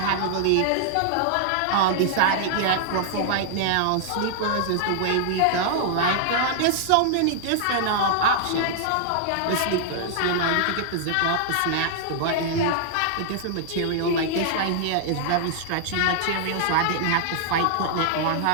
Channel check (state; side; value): different; both; correlation -0.01